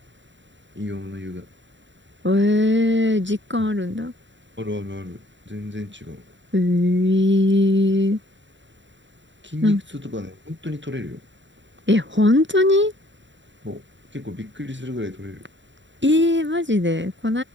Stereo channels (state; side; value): late; left; 0.54 ms